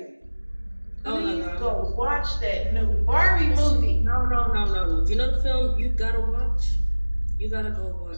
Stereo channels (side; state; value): both; inverted; correlation -1.00